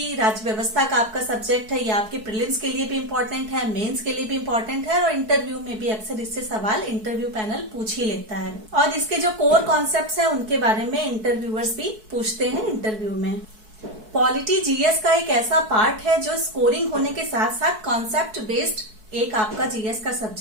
राज्य व्यवस्था का आपका सब्जेक्ट है, ये आपके प्रीलिम्स के लिए भी इम्पोर्टेंट है, मेंस के लिए भी इम्पोर्टेंट है और इंटरव्यू में भी अक्सर इससे सवाल इंटरव्यू पैनल पूछ ही लेता है। और इसके जो कोर कॉन्सेप्ट्स हैं उनके बारे में इंटरव्यूअर्स भी पूछते हैं इंटरव्यू में। पॉलिटी जीएस का एक ऐसा पार्ट है जो स्कोरिंग होने के साथ साथ कॉन्सेप्ट बेस्ड एक आपका जीएस का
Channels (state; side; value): late; left; 4.6 ms